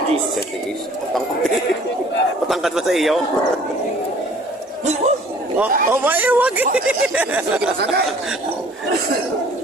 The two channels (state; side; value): normal; both; correlation 0.52